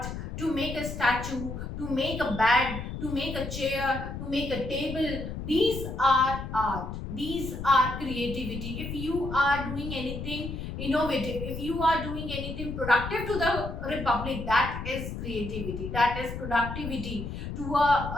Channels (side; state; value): left; noise; rumble, 7 dB below the sound